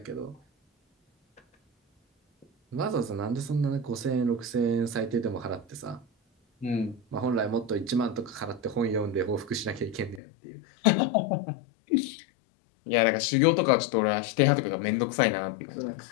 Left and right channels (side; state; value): right; drops out; at 10.2 s